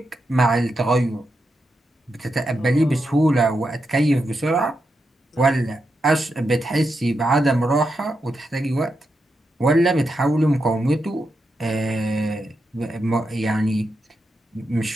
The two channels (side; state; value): both; normal; correlation 0.85